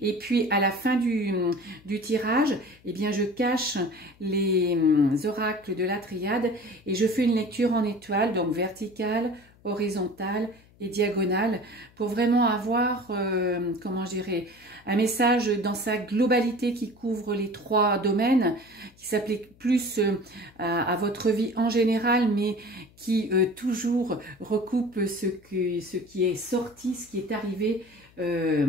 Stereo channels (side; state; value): left; noise; hum, 28 dB below the sound